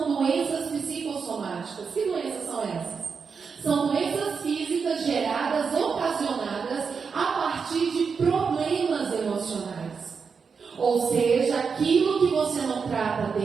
doenças psicossomáticas. Que doenças são essas? São doenças físicas geradas, ocasionadas a partir de problemas emocionais. Ou seja, aquilo que você não trata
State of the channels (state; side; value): quieter; left; 5.6 dB